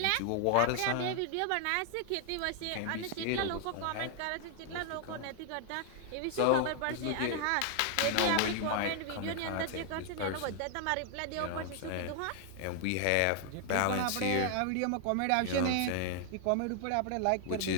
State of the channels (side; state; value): both; different; correlation 0.00